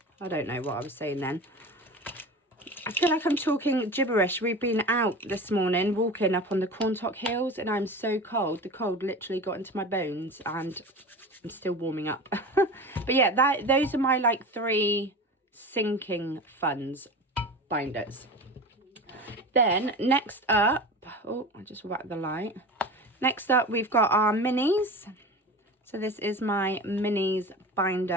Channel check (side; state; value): both; normal; correlation 0.32